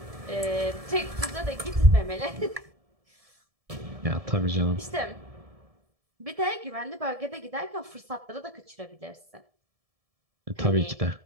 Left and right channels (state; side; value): late; left; 1.7 ms